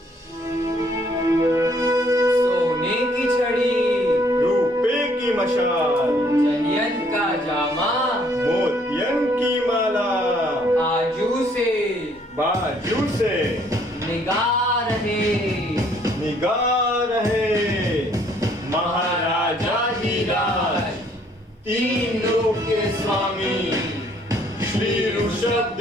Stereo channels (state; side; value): normal; both; correlation 0.64